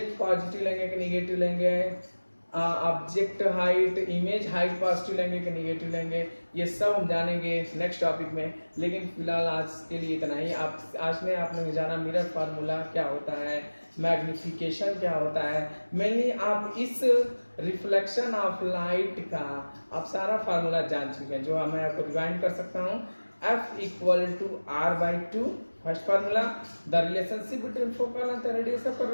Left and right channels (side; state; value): both; inverted; correlation -1.00